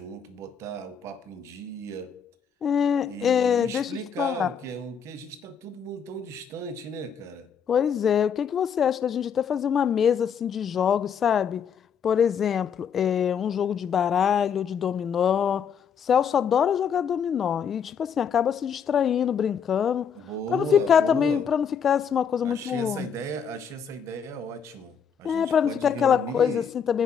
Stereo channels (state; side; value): quieter; right; 7.2 dB